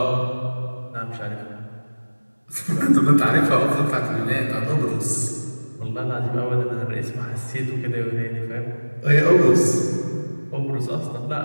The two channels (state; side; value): inverted; both; correlation -1.00